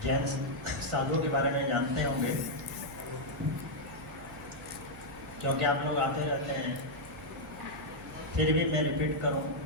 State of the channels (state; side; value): noise; right; hum, 18 dB below the sound